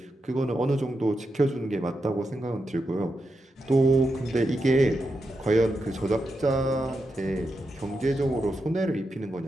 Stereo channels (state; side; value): normal; both; correlation 0.86